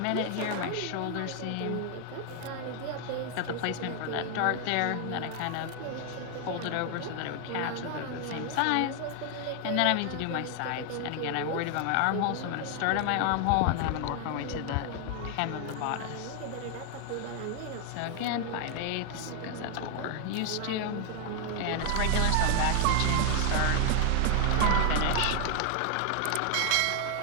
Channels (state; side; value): different; both; correlation 0.00